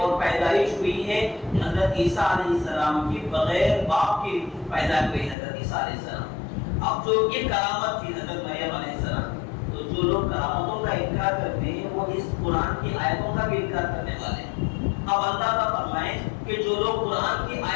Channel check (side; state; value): right; drops out; at 5.4 s